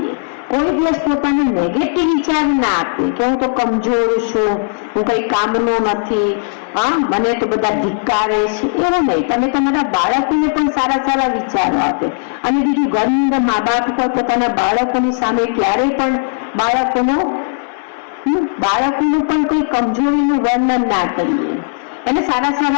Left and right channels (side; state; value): right; silent; digital silence